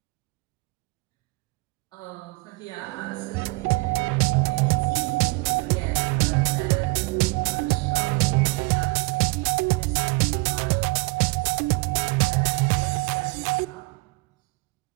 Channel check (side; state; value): left; quieter; 25.5 dB